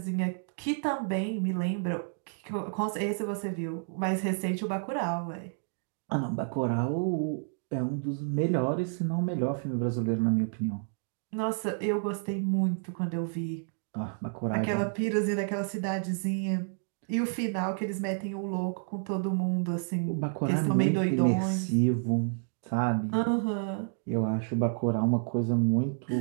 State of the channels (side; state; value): left; silent; digital silence